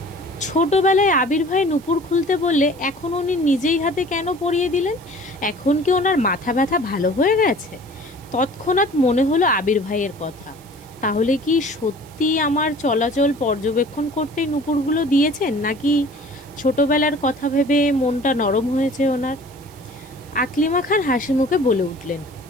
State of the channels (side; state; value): right; noise; hiss, 25 dB below the sound